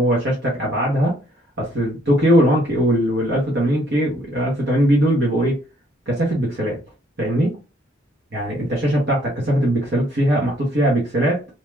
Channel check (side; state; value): both; normal; correlation 0.66